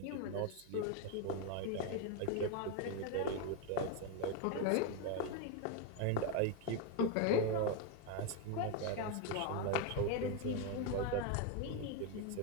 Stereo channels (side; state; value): both; different; correlation 0.01